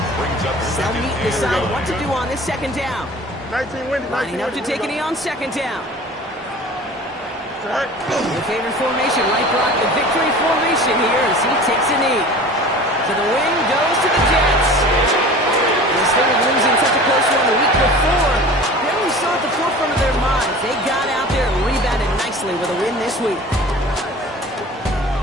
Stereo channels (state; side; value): normal; both; correlation 0.41